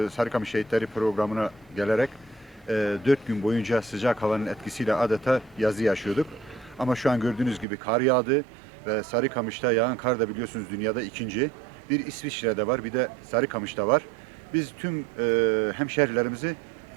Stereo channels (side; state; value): left; drops out; at 7.7 s